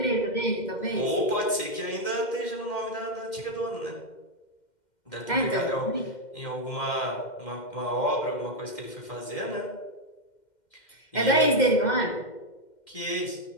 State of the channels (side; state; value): right; late; 2.1 ms